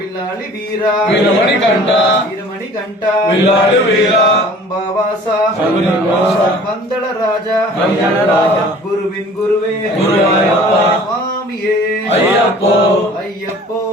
വില്ലാളി വീര വീരമണി കണ്ട വീരമണി കണ്ട വില്ലാളി വീര അംബാവാസ ശബരിവാസ പന്തള രാജ പന്തള രാജ ഗുരുവിൻ ഗുരുവേ ഗുരുവായൂരപ്പ സ്വാമിയേ അയ്യപ്പോ അയ്യപ്പോ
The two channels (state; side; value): normal; both; correlation 0.48